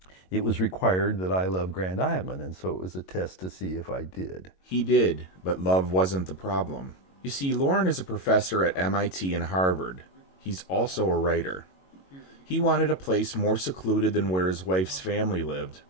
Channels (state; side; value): late; right; 22 ms